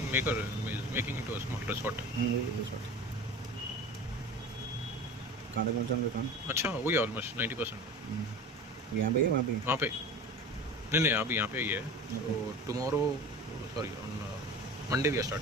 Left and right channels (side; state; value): both; normal; correlation 0.35